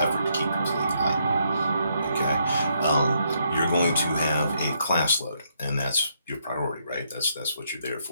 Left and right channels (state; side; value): inverted; both; correlation -0.74